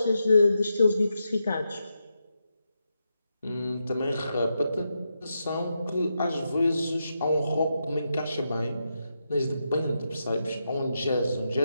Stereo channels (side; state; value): both; inverted; correlation -0.85